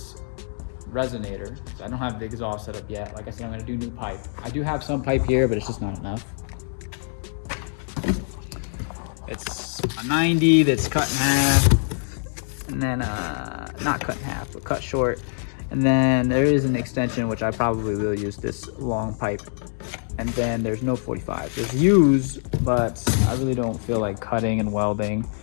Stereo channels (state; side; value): silent; right; 62 dB below the other